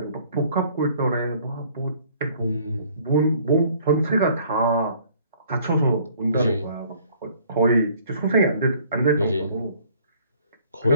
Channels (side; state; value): both; inverted; correlation -0.58